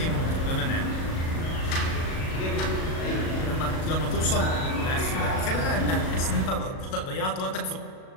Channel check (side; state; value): right; late; 37 ms